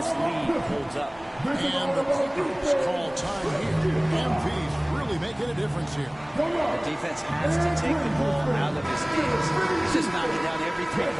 lead holds up. And the Clippers call time here. MP's really making a difference here. The defense has to take the ball out of his hands. He's just knocking down every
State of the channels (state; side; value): noise; right; hum, 26 dB below the sound